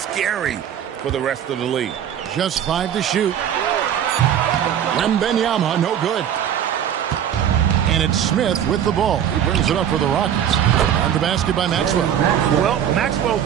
for the rest of the league. Just 5 to shoot. Wembanyama, no good. And it's Smith with the ball. He brings it up for the Rockets. On the basket by Maxwell. Well, Maxwell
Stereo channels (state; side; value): quieter; left; 9.6 dB